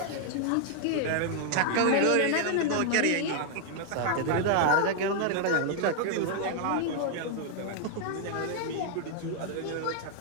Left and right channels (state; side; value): different; both; correlation 0.00